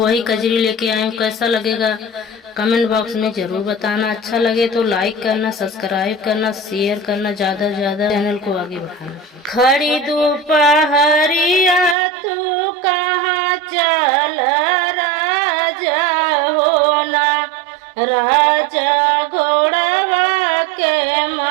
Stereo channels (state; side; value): drops out; left; at 12.0 s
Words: कजरी लेके आई हूँ। कैसा लगेगा कमेंट बॉक्स में जरूर बताना। अच्छा लगे तो लाइक करना, सब्सक्राइब करना, शेयर करना, ज्यादा से ज्यादा चैनल को आगे बढ़ाना। खड़ी दोपहरिया तू कहाँ चल राजा होना, राजा घोड़वा के